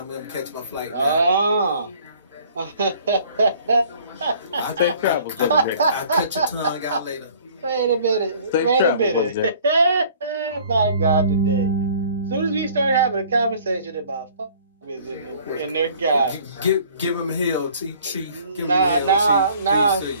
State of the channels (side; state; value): both; inverted; correlation -0.54